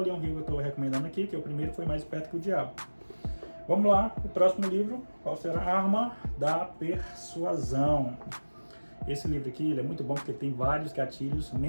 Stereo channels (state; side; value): inverted; both; correlation -1.00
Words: Hill que eu estou recomendando aqui, que o primeiro foi Mais Esperto que o Diabo. Vamos lá, o próximo livro, qual será? A Arma da Persuasão. Esse livro aqui, ele é muito bom porque tem vários gatilhos